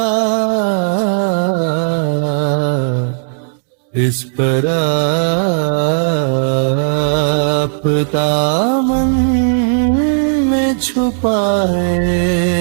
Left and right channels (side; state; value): left; silent; digital silence